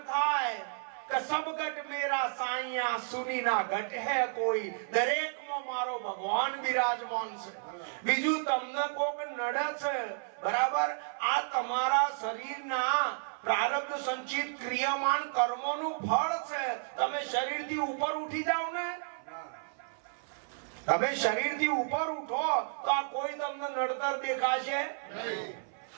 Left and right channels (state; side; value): silent; left; 56 dB below the other